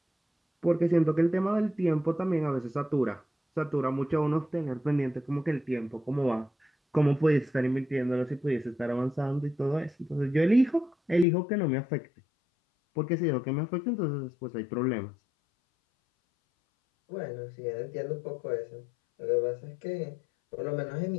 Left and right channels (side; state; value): right; drops out; at 11.2 s